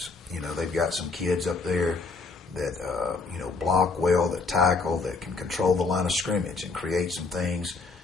They've got some kids up there that block well, that tackle, that can control the line of scrimmage and create some things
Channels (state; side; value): quieter; right; 4.1 dB